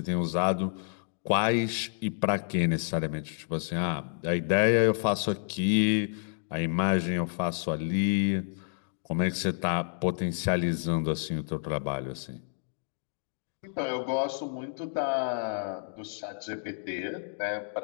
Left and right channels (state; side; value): silent; right; digital silence